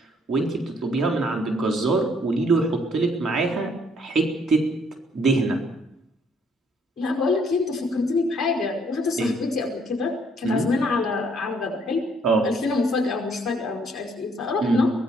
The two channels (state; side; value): normal; both; correlation 0.66